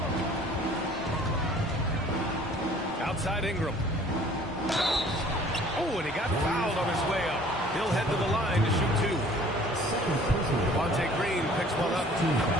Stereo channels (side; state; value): both; normal; correlation 0.52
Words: Outside Ingram. Oh, and He'll head to the line to shoot 2. Devontae Green picks one up.